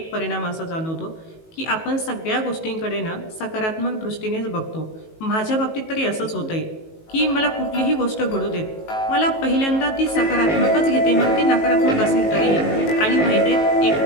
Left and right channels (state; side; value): late; right; 19 ms